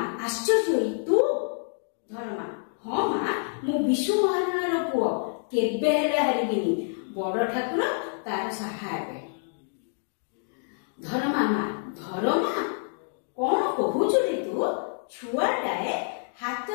ଆଶ୍ଚର୍ଯ୍ୟ ହୋଇ ତୁ? ଧରମା ହଁ ମା, ମୁଁ ବିଶ୍ୱ ମହାରଣାର ପୁଅ, କେବେ ହେଲେ ହାରିବିନି। ବଡ ଠାକୁର ତାର ସାହା ହେବେ। ଧରମା ମା ଧରମା କଣ କହୁଛୁ ରେ ତୁ? ଛୁଆଟାଏ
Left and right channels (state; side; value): silent; right; 60 dB below the other